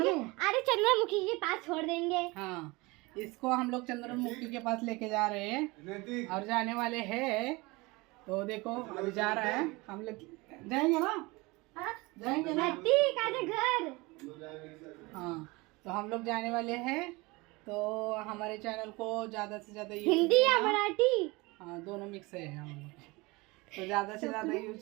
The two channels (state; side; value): quieter; left; 23.9 dB